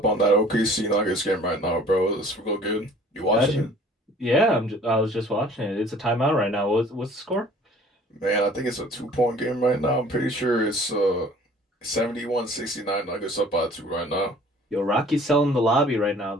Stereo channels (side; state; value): both; normal; correlation 0.51